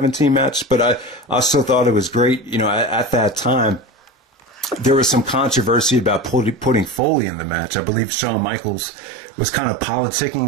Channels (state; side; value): drops out; left; at 7.0 s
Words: match, but I still thought it was great. At that time, there was some controversy about putting Foley in the match. I believe Shawn Michaels was kind of